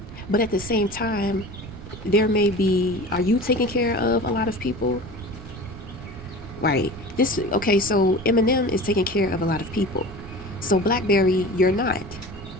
But at the same time, are you taking care of a lot of people? Right. So Eminem is taking care of a lot of people. So Blackberry, you're not.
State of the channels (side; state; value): right; noise; rumble, 14 dB below the sound